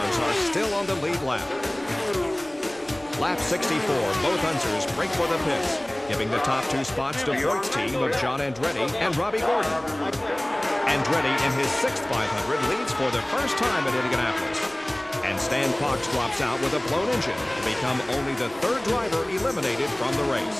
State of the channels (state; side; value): noise; right; rumble, 23 dB below the sound